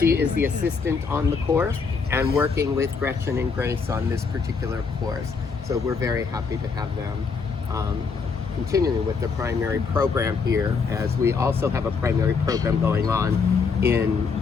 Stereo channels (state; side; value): quieter; right; 5.2 dB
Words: is the assistant on the course and working with Gretchen and Grace on this particular course. So we're very happy to have them continuing with the primary program here, as we also have a primary program going on in